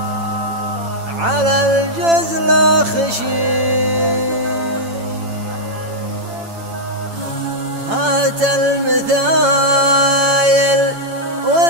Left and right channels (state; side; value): late; left; 8.9 ms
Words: على الجزل خشي، هات المثايل